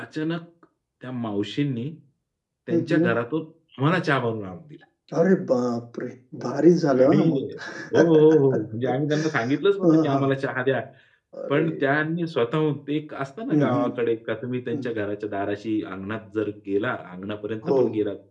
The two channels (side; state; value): both; identical; correlation 1.00